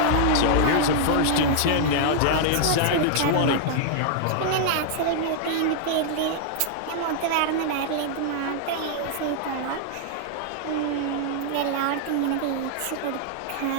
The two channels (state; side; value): different; both; correlation -0.01